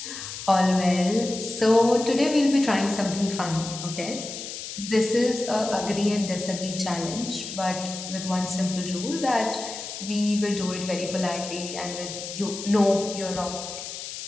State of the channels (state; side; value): noise; left; hiss, 9 dB below the sound